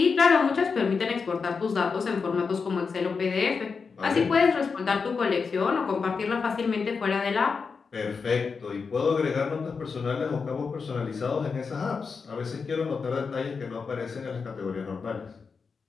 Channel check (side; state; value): right; quieter; 5.2 dB